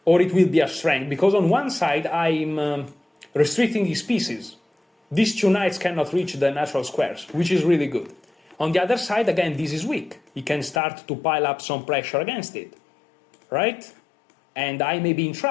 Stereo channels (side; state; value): right; drops out; at 10.8 s